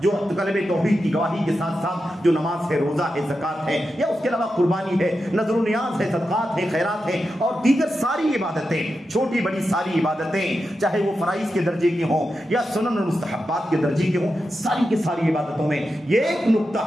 جو کلمہ توحید کی گواہی کے ساتھ ساتھ جو نماز ہے، روزہ ہے، زکات ہے، یا اس کے علاوہ قربانی ہے، نذر و نیاز ہے، صدقات ہے، خیرات ہے، اور دیگر ساری عبادتیں، چھوٹی بڑی ساری عبادتیں، چاہے وہ فرائض کے درجے کی ہوں یا سنن اور مستحبات کے درجے کی ہوں، ساری کی ساری عبادتوں میں یہ ایک نقطہ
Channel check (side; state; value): both; normal; correlation 0.89